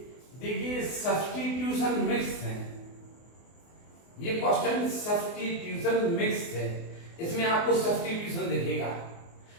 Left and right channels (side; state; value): right; late; 24 ms